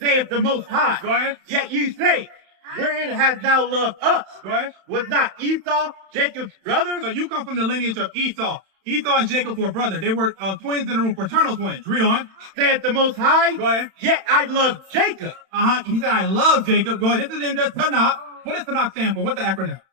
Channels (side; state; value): left; late; 31 ms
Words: the Most High. Go ahead. Yet you say, wherein hast thou loved us? Go ahead. Was not Esau Jacob's brother? So you come from the lineage of Esau. Esau and Jacob were brothers. They were twins in the room, fraternal twins. Read on. Saith the Most High. Go ahead. Yet I love Jacob. He said, I love Jacob. Go ahead. This is in the Tanakh. What does Tanakh stand for? What's the acronym?